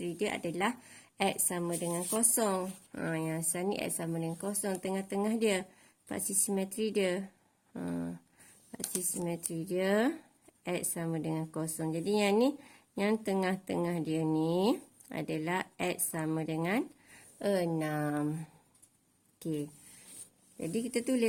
dia adalah X sama dengan 0. Yang asal ni X sama dengan 0. Tengah-tengah dia. Paksi simetri dia. Paksi simetri dia X sama dengan 0. Jadi yang ni, yang tengah-tengah dia ni adalah X sama dengan 6. Okey. Jadi kita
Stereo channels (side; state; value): both; identical; correlation 1.00